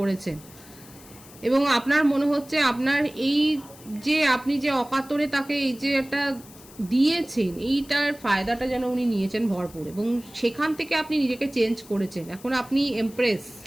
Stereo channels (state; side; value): noise; left; hiss, 21 dB below the sound